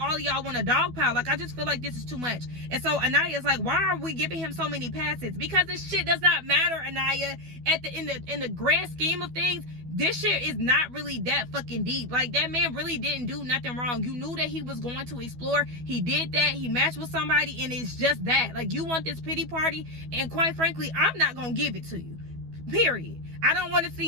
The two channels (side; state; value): left; late; 12 ms